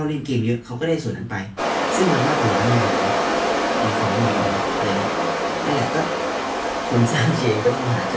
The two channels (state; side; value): identical; both; correlation 1.00